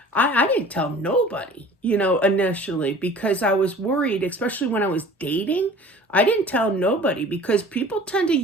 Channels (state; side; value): normal; both; correlation 0.45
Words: I didn't tell nobody, initially, because I was worried, especially when I was dating. I didn't tell nobody because people tend to